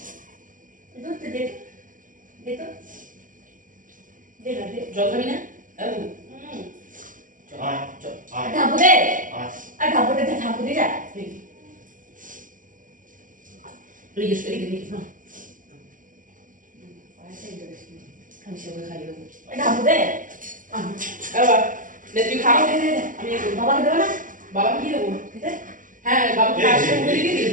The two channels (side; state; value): left; late; 0.38 ms